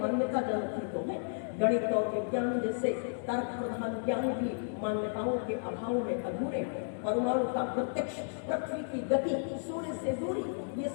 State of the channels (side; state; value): right; silent; 56 dB below the other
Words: मान्यता जनक ही तो है। गणित और विज्ञान जैसे तर्क प्रधान ज्ञान भी मान्यताओं के अभाव में अधूरे। परमाणु का प्रत्यक्ष, पृथ्वी की गति, सूर्य से दूरी, ये